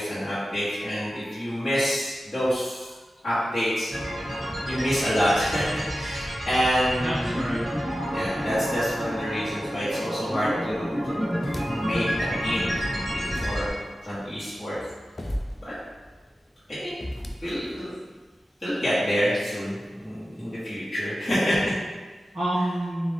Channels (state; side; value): normal; both; correlation 0.93